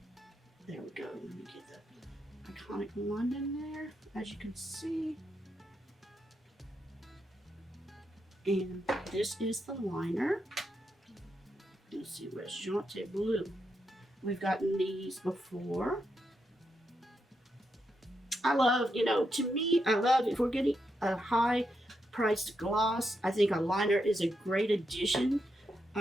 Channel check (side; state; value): both; normal; correlation 0.83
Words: There we go. Let me get the iconic London there, as you can see. And this is the liner. Let's see, where's Jonte Blue? We've gotten these before. I love, to me, I love if we're getting a high priced gloss, I think a liner is a great addition